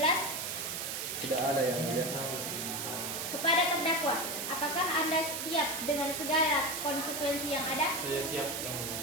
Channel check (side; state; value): right; noise; hiss, 3 dB below the sound